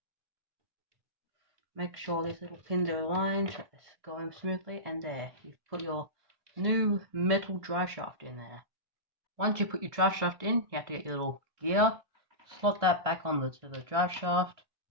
Make sure these little pins are aligned so it's going smoothly, and there, you've put your new metal drive shaft in there. Once you put your drive shaft in, you have to get your little gear, slot that back on to the drive shaft,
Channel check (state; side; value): late; left; 1.7 ms